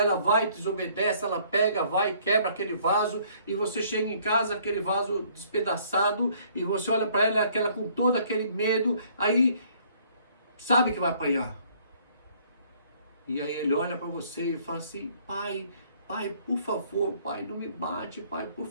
vai, desobedece, ela pega, vai, quebra aquele vaso, e você chega em casa, aquele vaso despedaçado, e você olha para ela, aquela com todo aquele medo, aí sabe que vai apanhar. E aí ele olha para você e fala assim: pai, por favor, pai, não me bate, pai, por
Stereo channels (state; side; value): inverted; both; correlation -0.61